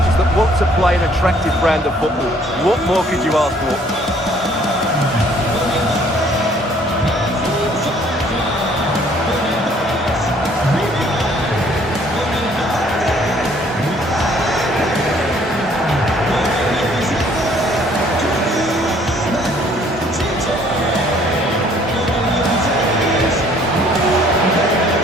that want to play an attractive brand of football. What more could you ask for?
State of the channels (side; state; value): both; normal; correlation 0.60